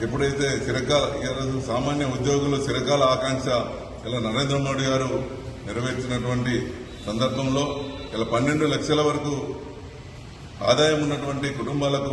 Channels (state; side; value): identical; both; correlation 1.00